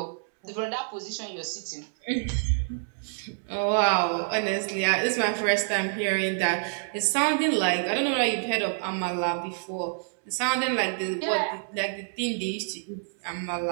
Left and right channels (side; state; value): left; silent; 60 dB below the other